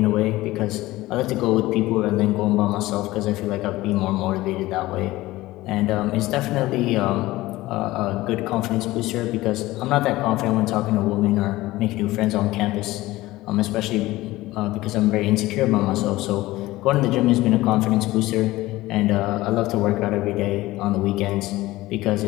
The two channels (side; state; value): right; quieter; 18.0 dB